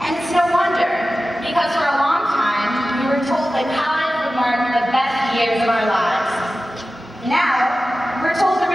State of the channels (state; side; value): normal; both; correlation 0.95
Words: it's no wonder, because for a long time, we were told that college would mark the best years of our lives. Now, we're told the